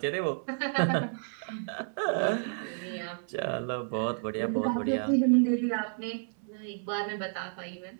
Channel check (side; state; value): left; silent; 57 dB below the other